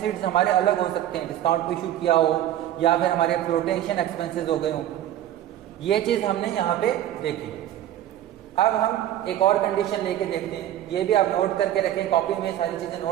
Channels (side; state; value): left; quieter; 12.3 dB